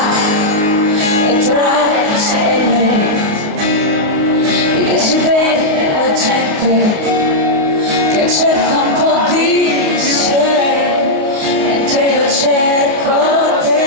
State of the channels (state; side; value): late; left; 29 ms